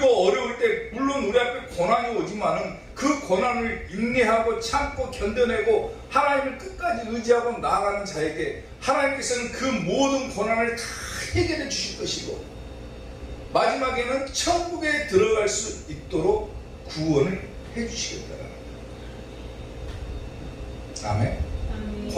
어려울 때 물론 우리 앞에 고난이 오지만은 그 고난을 인내하고 참고 견뎌내고 하나님을 끝까지 의지하고 나아가는 자에게 하나님께서는 그 모든 고난을 다 해결해 주실 것이고 마지막에는 천국에 들어갈 수 있도록 구원을 해 주시겠다라는 거예요. 아멘.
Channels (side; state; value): both; identical; correlation 1.00